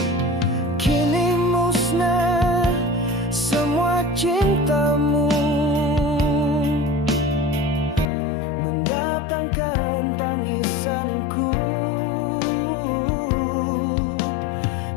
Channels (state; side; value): drops out; right; at 8.1 s